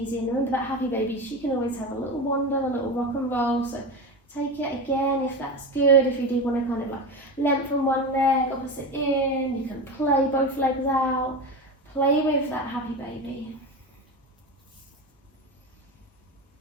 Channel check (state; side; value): normal; both; correlation 0.23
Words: in. Remember that happy baby, she can always have a little wander, a little rock and roll. So take it again if that's good. If you do want to kind of like lengthen one leg, opposite in, you can play both legs out. Play with that happy baby.